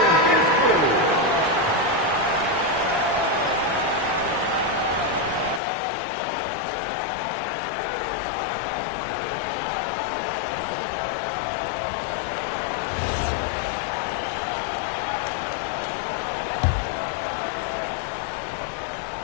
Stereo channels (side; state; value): right; drops out; at 5.6 s